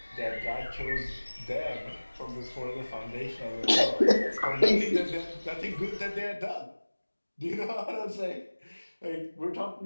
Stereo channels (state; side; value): inverted; both; correlation -1.00